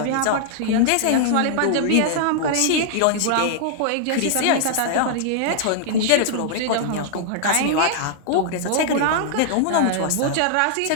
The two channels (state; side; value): different; both; correlation -0.01